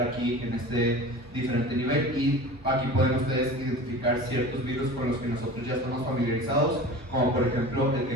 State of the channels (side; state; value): both; normal; correlation 0.36